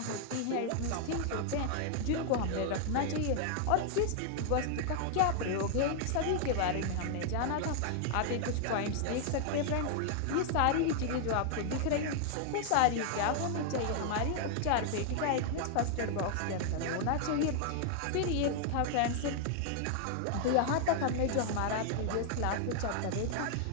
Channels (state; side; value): different; both; correlation 0.00